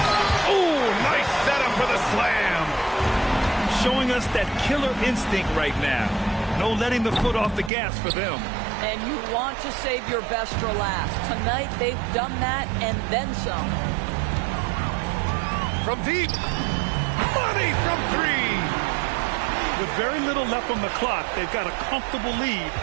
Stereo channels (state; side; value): drops out; left; at 7.7 s